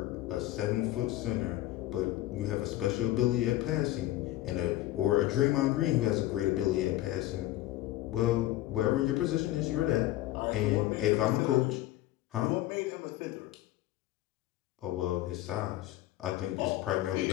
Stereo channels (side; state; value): right; quieter; 15.5 dB